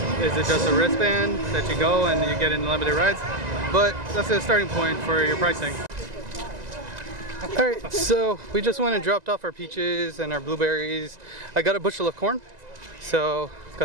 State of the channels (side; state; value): left; late; 1.9 ms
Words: is it just a wristband that you go and you get unlimited rides? But that's a starting point for your pricing. Alright, so we just went and dropped off our peaches and our blueberries. I got a bushel of corn, so